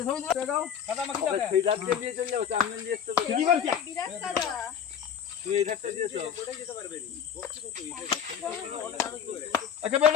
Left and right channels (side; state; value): right; quieter; 8.3 dB